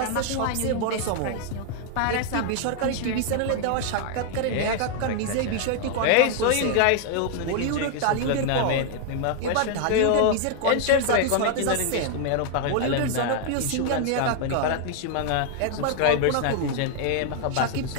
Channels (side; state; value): both; different; correlation 0.00